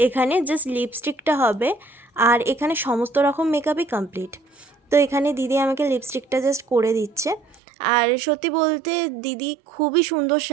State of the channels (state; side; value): drops out; left; at 7.6 s